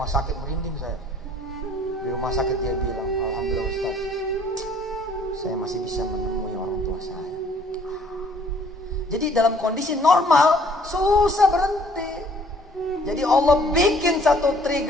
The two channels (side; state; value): both; normal; correlation 0.58